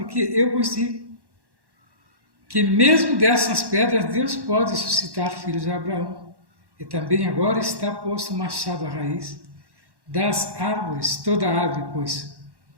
eu vos digo que mesmo dessas pedras Deus pode suscitar filhos de Abraão. E também agora está posto o machado à raiz das árvores. Toda árvore, pois,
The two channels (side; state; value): left; late; 1.1 ms